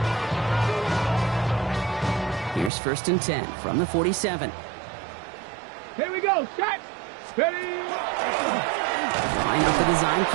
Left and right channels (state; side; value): drops out; left; at 2.7 s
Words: Here's 1st and 10 from the 47. Here we go. Set. Ready. Line up the design